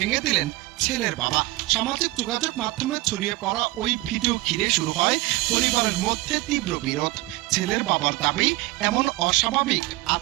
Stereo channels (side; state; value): left; quieter; 19.9 dB